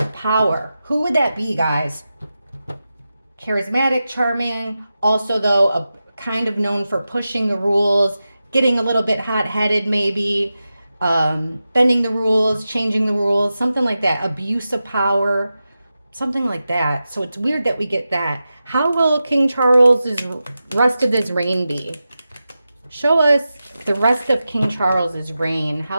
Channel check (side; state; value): both; inverted; correlation -0.92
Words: power. Who would that be, guys? Charismatic, charming, also though a kind of known for pushing the rules, getting a little bit hot-headed maybe, bending the rules, changing the rules, something like that. Abuse of power, something like that. So it's weird that we get that. How will King Charles's rest of his reign be? Show us the rest of King Charles's reign.